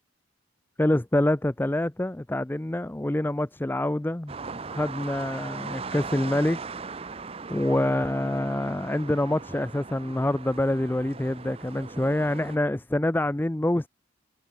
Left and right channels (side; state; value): both; normal; correlation 0.89